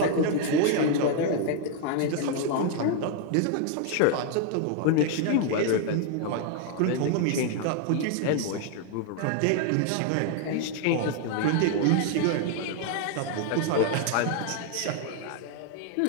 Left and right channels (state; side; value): different; both; correlation 0.00